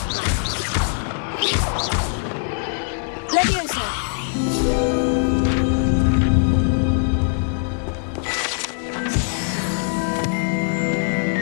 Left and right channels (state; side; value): silent; right; 59 dB below the other